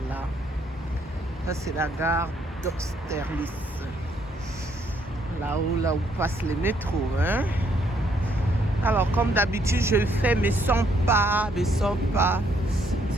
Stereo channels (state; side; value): normal; both; correlation 0.70